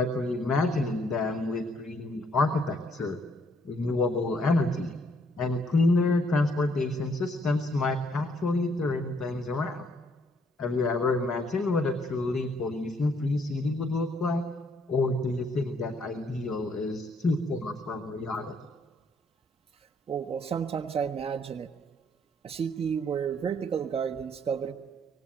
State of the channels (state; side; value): normal; both; correlation 0.68